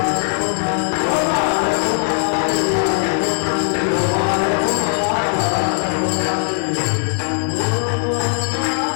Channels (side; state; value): right; silent; digital silence